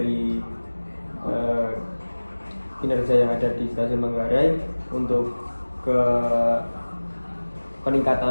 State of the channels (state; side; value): inverted; both; correlation -1.00